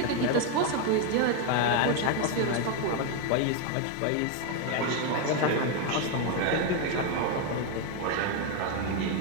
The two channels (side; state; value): both; different; correlation 0.01